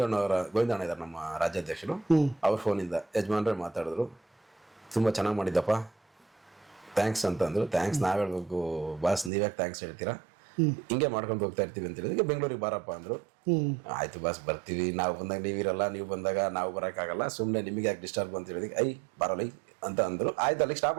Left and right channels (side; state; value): left; drops out; at 9.3 s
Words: ಇದ್ದಾರೆ ನಮ್ಮ ರಾಜ್ಯಾಧ್ಯಕ್ಷರು, ಅವ್ರ ಫೋನಿಂದ ಯಜಮಾನ್ರೆ ಮಾತಾಡಿದ್ರು, ತುಂಬ ಚೆನ್ನಾಗಿ ಮಾಡಿದ್ದಪ್ಪ, ಥ್ಯಾಂಕ್ಸ್ ಅಂತ ಅಂದರು. ಥ್ಯಾಂಕ್ಸ್ ನಾವು ಹೇಳ್ಬೇಕು ಬಾಸ್, ನೀವ್ಯಾಕೆ ಥ್ಯಾಂಕ್ಸ್ ಹೇಳ್ತೀರಾ, ಹಿಂಗೆ ಮಾಡ್ಕೊಂಡು ಹೋಗ್ತಾ ಇರ್ತೀವಿ ಅಂತ ಹೇಳಿದ್ರೆ ಬೆಂಗಳೂರಿಗೆ ಬಾರಪ್ಪ ಅಂದರು. ಆಯ್ತು ಬಾಸ್ ಬರ್ತೀವಿ, ನಾವು ಬಂದಾಗ ನೀವಿರಲ್ಲ, ನೀವು ಬಂದಾಗ ನಾವು ಬರೋಕ್ಕಾಗಲ್ಲ, ಸುಮ್ಮನೆ ನಿಮಗೆ ಯಾಕೆ ಡಿಸ್ಟರ್ಬ್ ಅಂತ ಹೇಳಿದಕ್ಕೆ ಬರಲ್ಲ ಅಂತ ಅಂದರು. ಆಯ್ತು, ಅಲ್ಲಿಗೆ ಸ್ಟಾಪ್